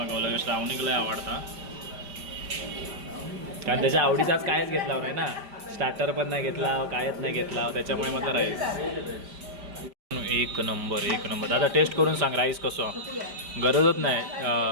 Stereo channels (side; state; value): left; late; 5.1 ms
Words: श्रावणीला लय आवडता कारण त्याच्या आवडीचाच कायच घेतला नाही ना. स्टार्टर पण नाही घेतला कायच नाही घेतला त्याच्यामुळे म्हटलं राईस एक नंबर एक नंबर. दादा टेस्ट करून सांग राईस कसं. गरजच नाही